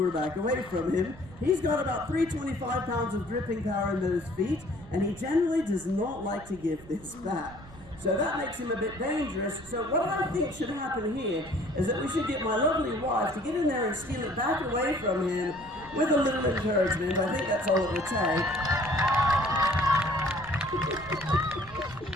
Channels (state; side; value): noise; right; rumble, 19 dB below the sound